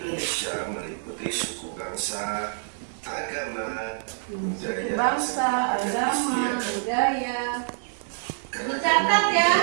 meliputi suku bangsa, agama, budaya, Bangsa, agama, budaya. Dicatat ya.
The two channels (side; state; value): left; silent; digital silence